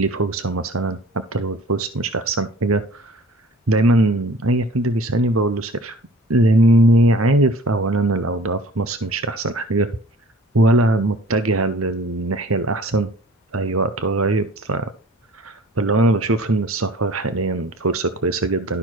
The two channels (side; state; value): both; normal; correlation 0.47